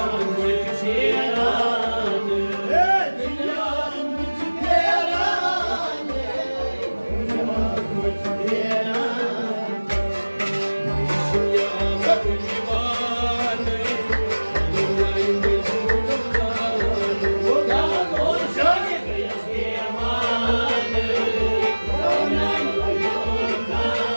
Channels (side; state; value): both; inverted; correlation -1.00